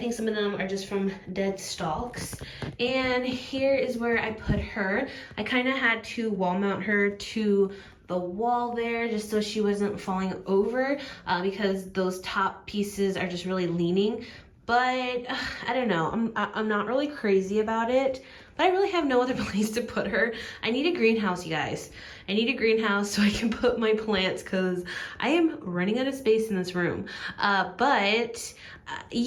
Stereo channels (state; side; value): identical; both; correlation 1.00